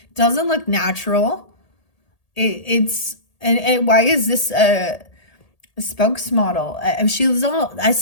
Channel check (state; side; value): late; right; 1.8 ms